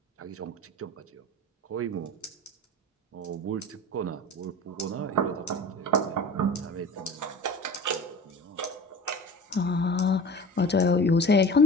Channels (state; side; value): normal; both; correlation 0.36